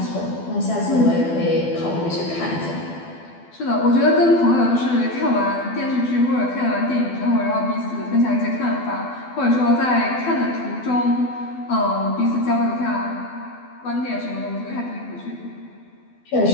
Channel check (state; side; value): late; right; 12 ms